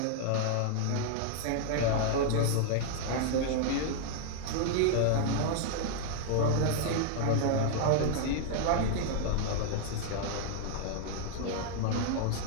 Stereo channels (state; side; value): different; both; correlation 0.00